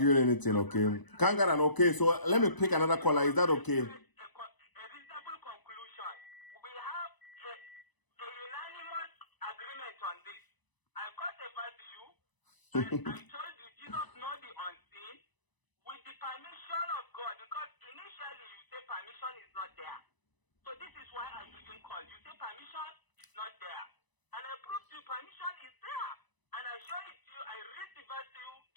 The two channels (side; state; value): right; late; 1.0 ms